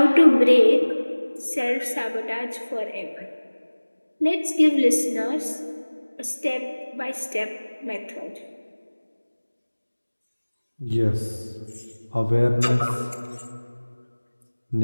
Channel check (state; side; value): inverted; both; correlation -1.00